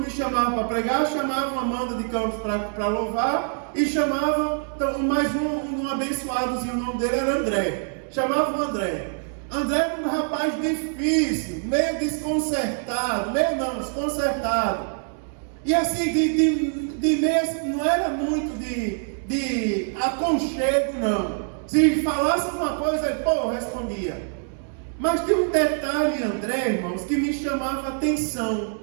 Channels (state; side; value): silent; left; 59 dB below the other